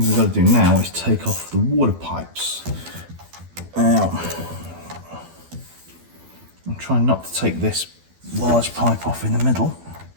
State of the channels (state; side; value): late; left; 12 ms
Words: we've got to do now is take off the water pipes. Now, I'm trying not to take this large pipe off in the middle.